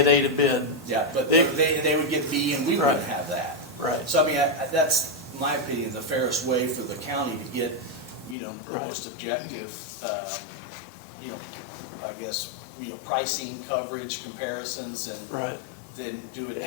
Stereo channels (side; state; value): right; drops out; at 8.3 s